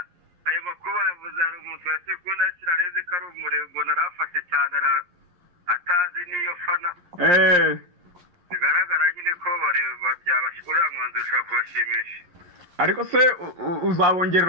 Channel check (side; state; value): left; late; 11 ms